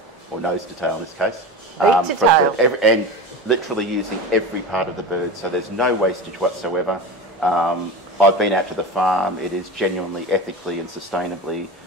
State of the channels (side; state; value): both; normal; correlation 0.28